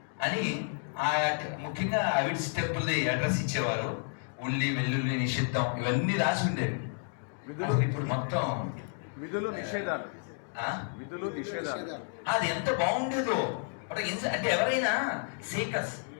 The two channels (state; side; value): silent; right; 57 dB below the other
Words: అని ముఖ్యంగా అవిడ్స్ టెంపుల్ది అడ్రస్ ఇచ్చేవారు. ఉల్లి వెల్లుల్లి నిషిద్ధం ఇవన్నీ రాసి ఉండేవి. ఇప్పుడు మొత్తం విధులు నిషేధాలు అది ఎంత బాగుండేదో. అంటే ఎవరైనా సీకర్స్